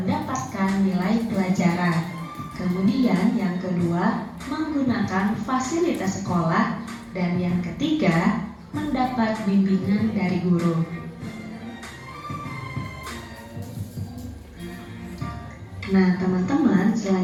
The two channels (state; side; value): identical; both; correlation 1.00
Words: nilai pelajaran. Kemudian yang kedua, menggunakan fasilitas sekolah. Dan yang ketiga, mendapat bimbingan dari guru. Nah teman-teman,